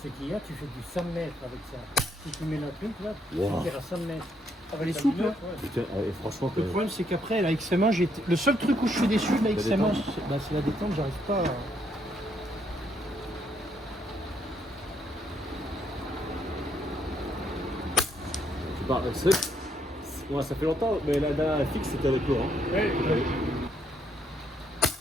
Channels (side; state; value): both; normal; correlation 0.73